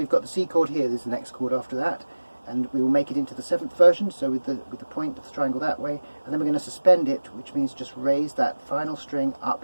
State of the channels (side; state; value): both; inverted; correlation -1.00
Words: got the C chord here, there's the next chord after that, and we will make it into the 7th version, so with the point of the triangle that way, and then we're going to suspend it, which means just raise that final string